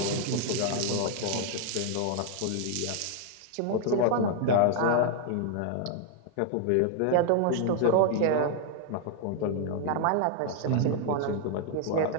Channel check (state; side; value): different; both; correlation 0.00